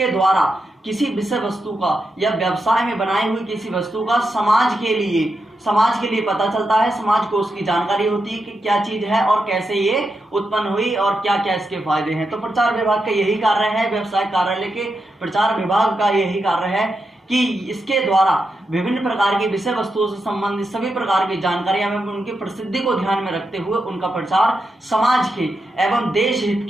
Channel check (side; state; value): both; normal; correlation 0.86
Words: द्वारा किसी विषय वस्तु का या व्यवसाय में बनाई हुई किसी वस्तु का समाज के लिए पता चलता है, समाज को उसकी जानकारी होती है कि क्या चीज है और कैसे ये उत्पन्न हुई और क्या क्या इसके फायदे हैं। तो प्रचार विभाग का यही कार्य है, व्यवसाय कार्यालय के प्रचार विभाग का यही कार्य है कि इसके द्वारा विभिन्न प्रकार की विषय वस्तुओं से संबंधित सभी प्रकार की जानकारियां एवं उनकी प्रसिद्धि को ध्यान में रखते हुए उनका प्रचार समाज के एवं देश हित